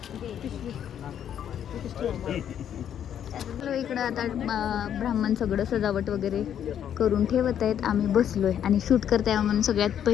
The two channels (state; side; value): quieter; right; 9.5 dB